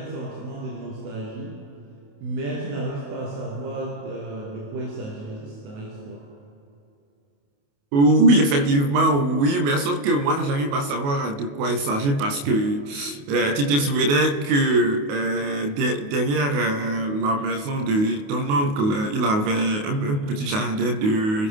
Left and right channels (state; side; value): late; left; 28 ms